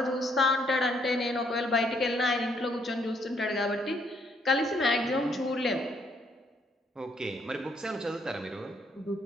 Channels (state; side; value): normal; both; correlation 0.69